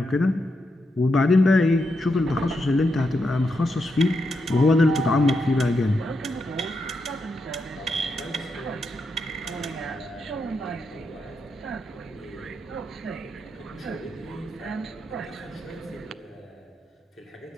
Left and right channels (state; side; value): normal; both; correlation 0.84